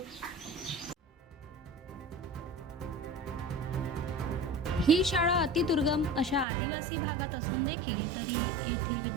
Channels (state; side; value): drops out; left; at 6.5 s